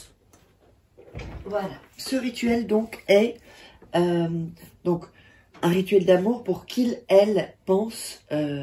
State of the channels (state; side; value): identical; both; correlation 1.00